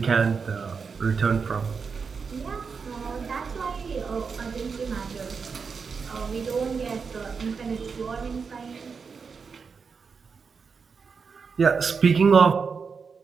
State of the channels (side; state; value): left; quieter; 5.5 dB